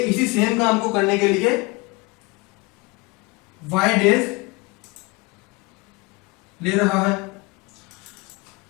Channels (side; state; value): right; quieter; 25.3 dB